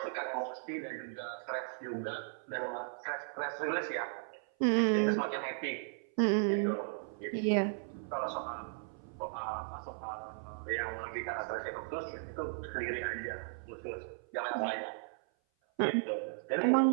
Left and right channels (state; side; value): silent; left; 54 dB below the other